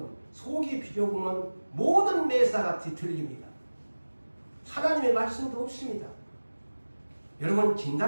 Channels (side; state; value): both; inverted; correlation -1.00